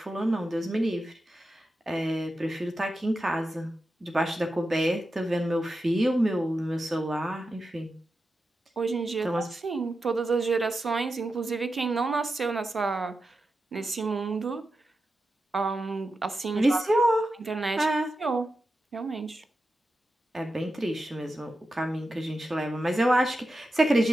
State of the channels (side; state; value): both; normal; correlation 0.90